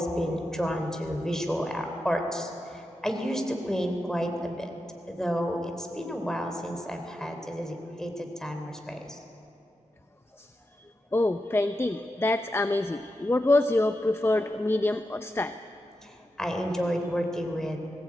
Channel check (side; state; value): both; normal; correlation 0.88